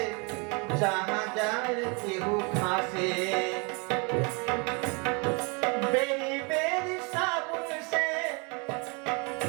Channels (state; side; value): quieter; left; 32.1 dB